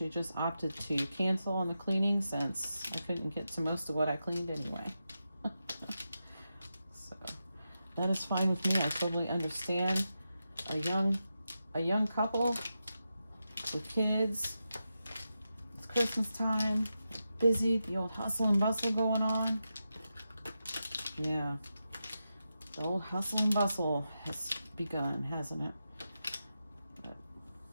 just opted to cancel on the cleaning since I couldn't get to most of what I cleaned anyway. So that is fine with me. I totally understand. A young couple with kids, it's Christmas time, busy, the old hustle and bustle going on. Yeah, the old hustle and bustle has begun, hasn't it? But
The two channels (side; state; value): both; inverted; correlation -0.89